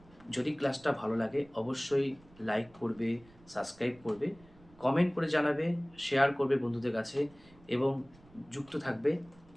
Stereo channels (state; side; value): noise; right; rumble, 26 dB below the sound